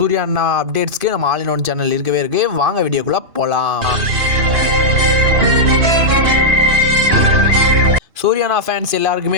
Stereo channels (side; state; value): left; late; 2.8 ms